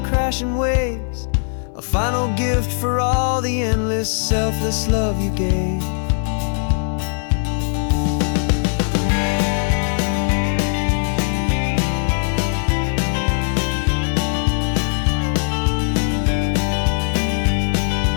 crashing waves, a final gift for all the endless, selfless love you gave.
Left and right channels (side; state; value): right; silent; 58 dB below the other